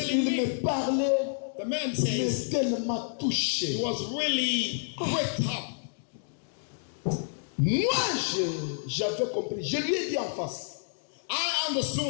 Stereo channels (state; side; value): silent; right; digital silence